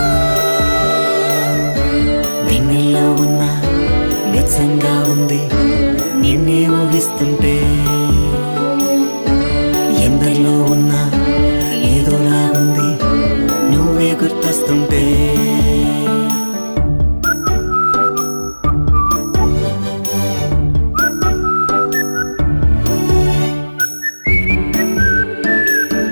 చూస్తుంటే ఎందరిలో ఉన్నా ఏదోలాగుంది నువ్వే గుర్తొస్తుంటే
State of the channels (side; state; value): both; inverted; correlation -1.00